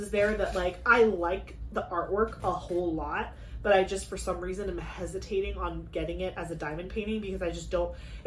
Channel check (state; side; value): identical; both; correlation 1.00